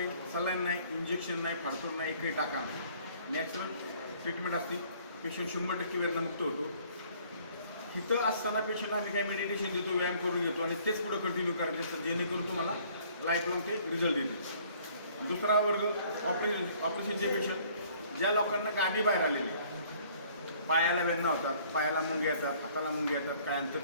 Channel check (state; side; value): inverted; both; correlation -0.58